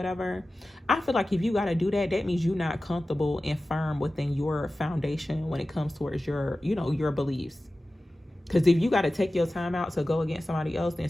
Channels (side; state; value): both; normal; correlation 0.95